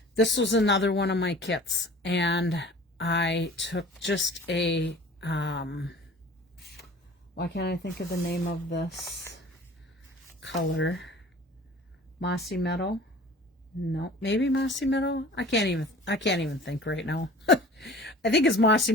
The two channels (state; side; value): normal; both; correlation 0.44